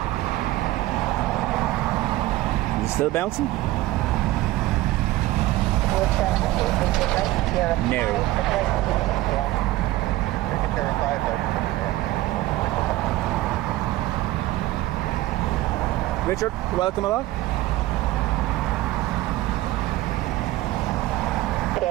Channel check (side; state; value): left; quieter; 17.0 dB